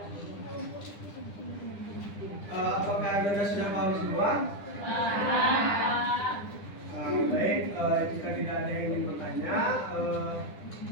Apakah Anda sudah paham semua? Baik, jika tidak ada yang ingin bertanya,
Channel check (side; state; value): right; late; 9.9 ms